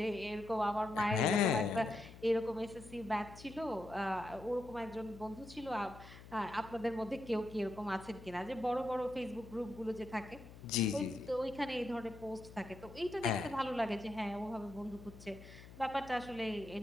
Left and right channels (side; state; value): left; noise; hum, 17 dB below the sound